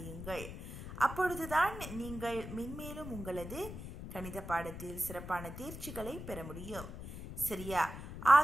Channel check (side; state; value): left; noise; rumble, 9 dB below the sound